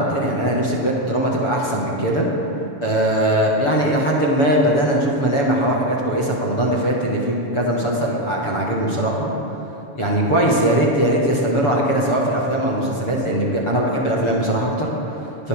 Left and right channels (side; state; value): right; late; 7.0 ms